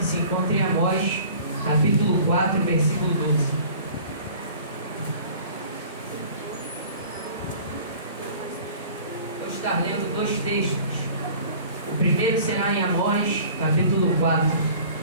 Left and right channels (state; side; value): inverted; both; correlation -0.46